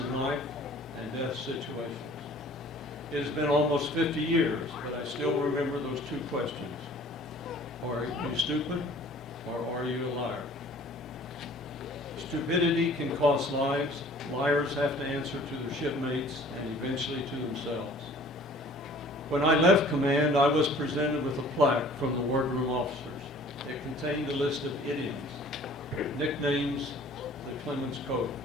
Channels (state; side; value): normal; both; correlation 0.50